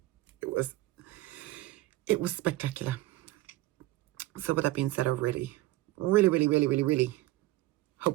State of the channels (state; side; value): quieter; left; 17.5 dB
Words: It was spectacular. So with that being said, I really